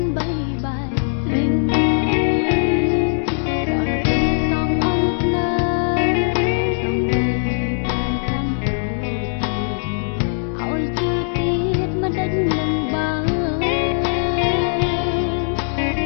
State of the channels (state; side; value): silent; right; digital silence